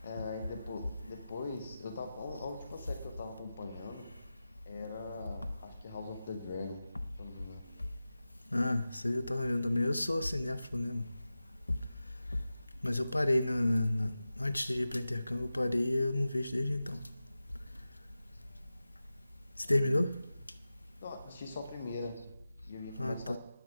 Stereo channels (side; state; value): both; inverted; correlation -0.94